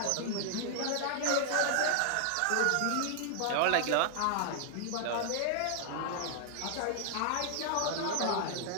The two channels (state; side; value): different; both; correlation 0.00